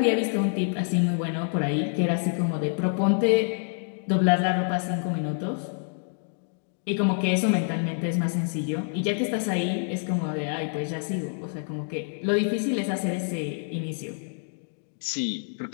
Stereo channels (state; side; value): silent; right; 59 dB below the other